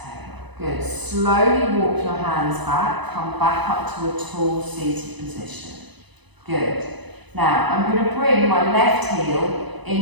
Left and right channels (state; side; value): late; left; 1.0 ms